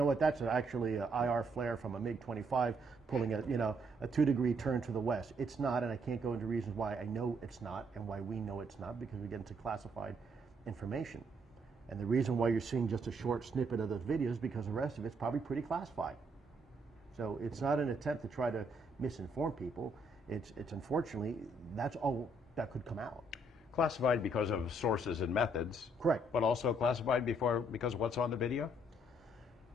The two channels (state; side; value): normal; both; correlation 0.70